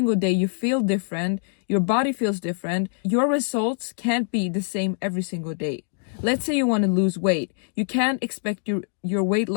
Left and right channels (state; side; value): silent; right; digital silence